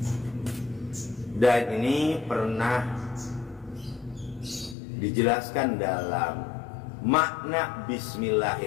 Dan ini pernah dijelaskan dalam makna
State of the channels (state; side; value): drops out; right; at 4.8 s